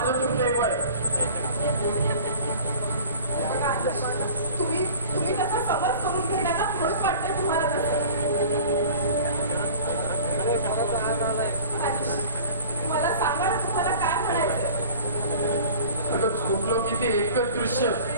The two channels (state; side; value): inverted; both; correlation -0.43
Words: दुर्दैव आहे. तुम्ही तसा समज करून घेणार ना म्हणून वाटतंय तुम्हाला तसं. मला सांगा ना तुम्हाला काय म्हणायचंय. अगं झोपलो की ते एकच दृश्य